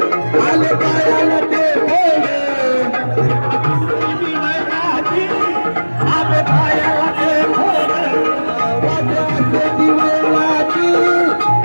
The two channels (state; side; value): inverted; both; correlation -1.00